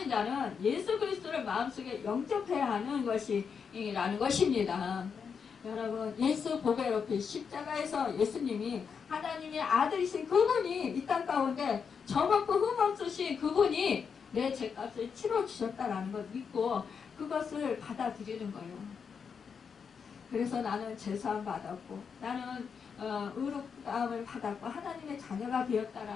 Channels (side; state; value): right; quieter; 6.3 dB